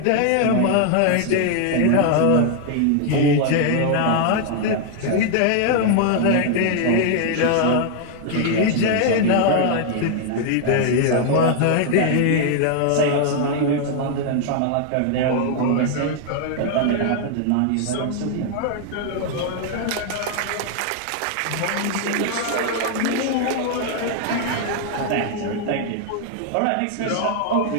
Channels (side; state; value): both; different; correlation 0.00